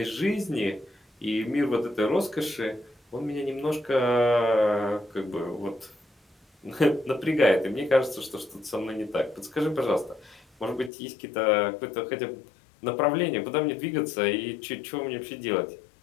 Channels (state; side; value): drops out; right; at 10.9 s